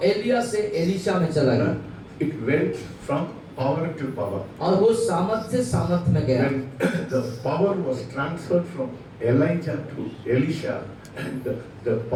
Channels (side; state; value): both; identical; correlation 1.00